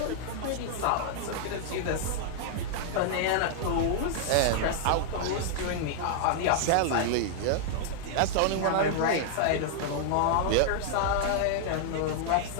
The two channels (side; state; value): both; different; correlation -0.01